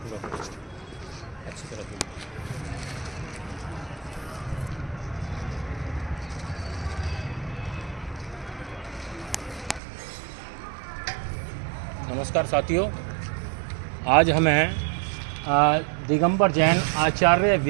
अच्छी तरह नमस्कार साथियों, आज हम हैं दिगंबर जैन आचार्य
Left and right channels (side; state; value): left; drops out; at 9.8 s